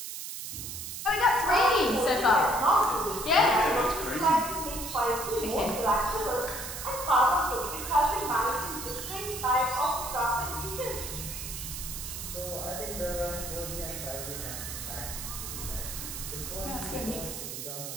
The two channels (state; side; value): noise; right; hiss, 7 dB below the sound